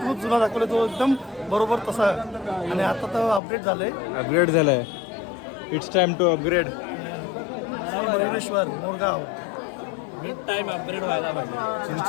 जुना दाखवला, तो एकदम बरोबर तसा. आणि आता तर अपडेट झालंय. अपग्रेड झालाय. It's time to upgrade. Moreshwar Morgaon with time upgrade व्हायला पाहिजे.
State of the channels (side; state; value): right; drops out; at 3.4 s